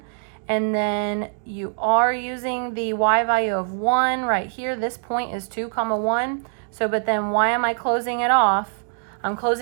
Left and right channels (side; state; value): left; silent; digital silence